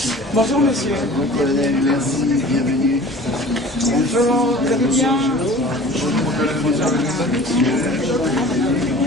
Bonjour monsieur. Mon colonel, merci, bienvenue. Bonjour, vous allez bien?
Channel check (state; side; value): normal; both; correlation 0.44